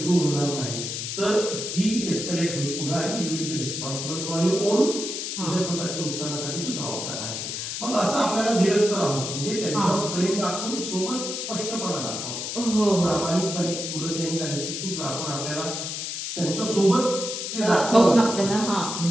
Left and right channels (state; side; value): noise; left; hiss, 4 dB below the sound